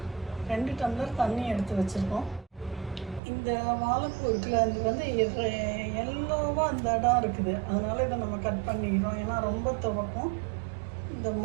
2 டம்ளர் தண்ணி எடுத்து வச்சுருக்கோம். இந்த வாழைப்பூ இருக்குல்ல, அது வந்து எல்லோவாக அந்த இடம் இருக்குது, அதனால் இதை நம்ம கட் பண்ணிக்கிறோம். ஏன்னா ரொம்ப துவக்கும், இந்த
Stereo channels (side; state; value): left; drops out; at 3.2 s